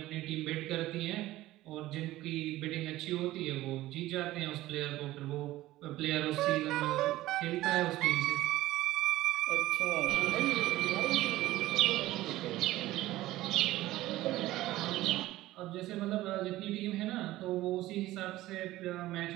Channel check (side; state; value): left; quieter; 16.4 dB